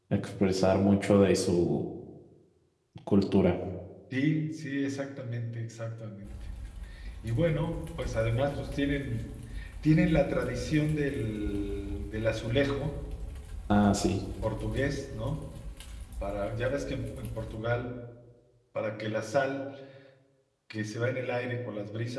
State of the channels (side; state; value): both; identical; correlation 1.00